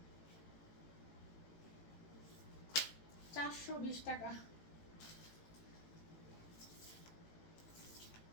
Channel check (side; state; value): right; late; 18 ms